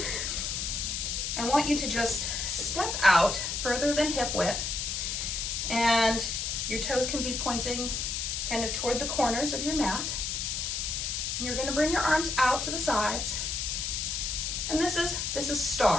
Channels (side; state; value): left; noise; hiss, 2 dB below the sound